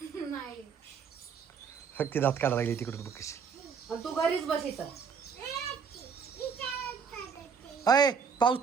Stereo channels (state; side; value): quieter; left; 6.3 dB